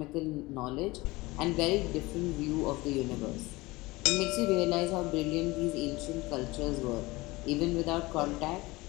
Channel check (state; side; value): quieter; right; 21.5 dB